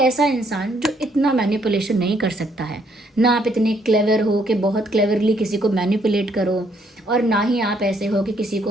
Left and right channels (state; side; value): normal; both; correlation 0.69